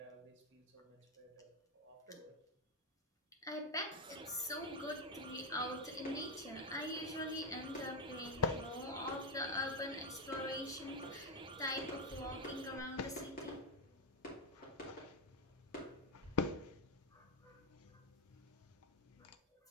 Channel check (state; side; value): normal; both; correlation 0.06